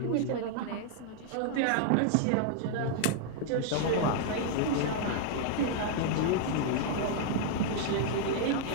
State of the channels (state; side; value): different; both; correlation 0.00